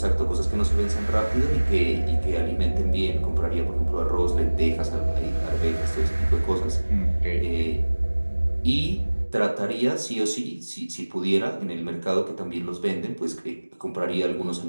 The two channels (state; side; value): inverted; both; correlation -1.00